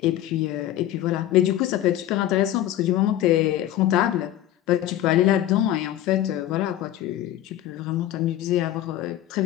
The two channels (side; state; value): right; quieter; 12.9 dB